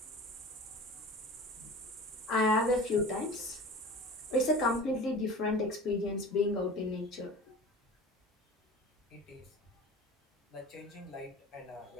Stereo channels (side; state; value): both; normal; correlation 0.38